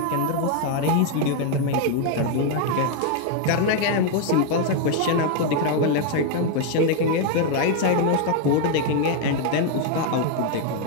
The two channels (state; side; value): different; both; correlation 0.00